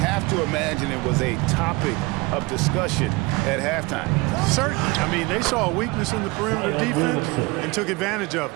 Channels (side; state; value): left; quieter; 24.1 dB